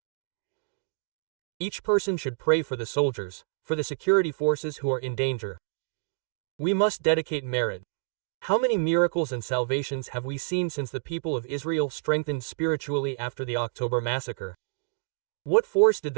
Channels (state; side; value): quieter; left; 34.9 dB